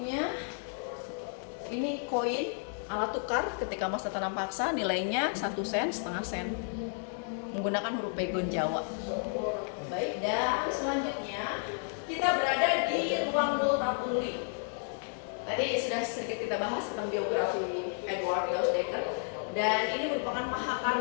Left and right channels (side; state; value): right; silent; 56 dB below the other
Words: ini koin, alat tukar ketika masa tanam paksa, nilainya 1 sen, setengah sen. menggunakan huruf pegon Jawa. Baik, dan selanjutnya kita berada di ruang Multatuli. Tadi sudah sedikit kita bahas tentang biografi Edward Dousdekker, dan ini merupakan